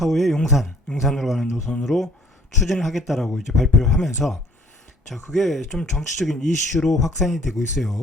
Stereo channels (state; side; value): normal; both; correlation 0.57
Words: 용산으로 가는 노선으로 추진을 하겠다라고 이제 발표를 하면서, 자, 그게 좀 정치적인 이슈로 확산이 되고